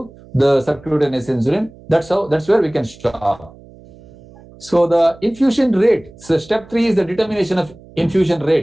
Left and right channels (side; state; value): right; noise; hum, 23 dB below the sound